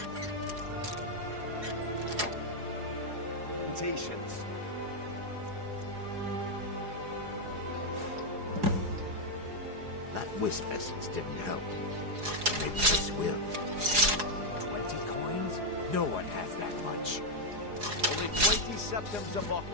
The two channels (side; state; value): left; late; 4.8 ms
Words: Implementations. That wisp essence didn't help. Maybe this will. 20 coins? No one has that much. Only 20 septims a bottle.